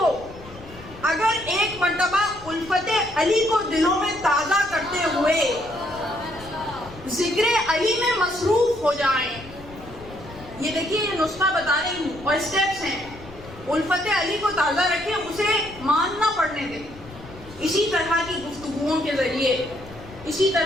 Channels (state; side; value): noise; left; rumble, 18 dB below the sound